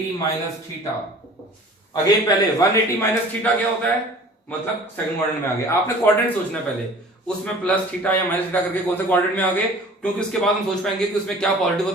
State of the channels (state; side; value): normal; both; correlation 0.46